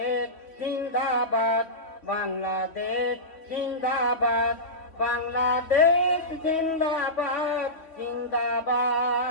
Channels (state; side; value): late; right; 3.1 ms